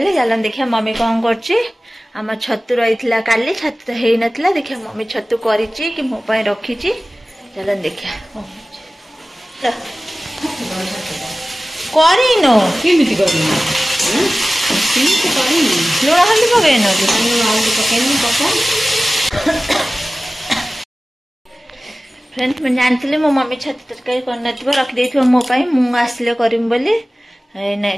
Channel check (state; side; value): normal; both; correlation 0.97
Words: चलन देखिए मम्मी कौन करम छतु रही काली छतु तो हो नाला देखिए मम्मी छतु करी कि मो रखी चलन देखिए लुण हल्दी पकड़ फ्रेंड्स मैं जानती मो मम्मी छतु तरकारी कर रखी मोपाई मुझे आसिले करम बोली